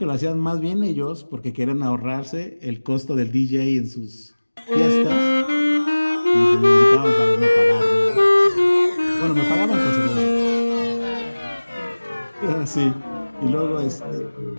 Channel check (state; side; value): inverted; both; correlation -1.00